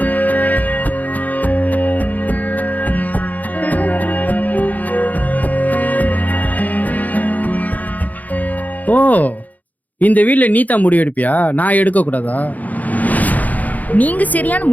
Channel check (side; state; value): right; late; 0.079 ms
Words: இந்த வீட்ல நீ தான் முடிவு எடுப்பியா? நான் எடுக்க கூடாதா? நீங்க சரியான